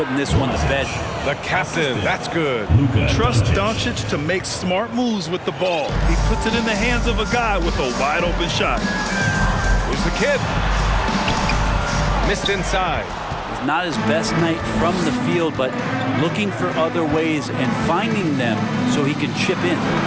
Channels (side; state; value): both; identical; correlation 1.00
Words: this one to bed. The captain. That's good. Trust Doncic to make smart moves with the ball. He puts it in the hands of a guy with a wide open shot. Here's the kid. Missed inside. It's not his best night from the field, but looking for other ways and finding them so he can chip in.